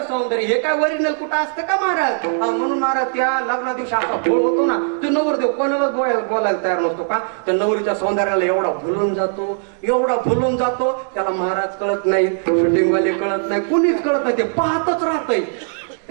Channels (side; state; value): left; silent; digital silence